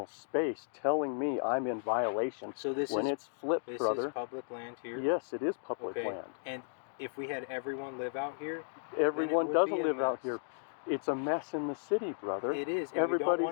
space, telling me I'm in violation. So this when is it's flipped, this brother. is public land here. Yes, it is public Okay. land. And if we had everyone live out here, Everyone doesn't live out mess. here. It's a mess in the city, brother. It is. And Everybody's we don't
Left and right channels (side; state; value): right; silent; digital silence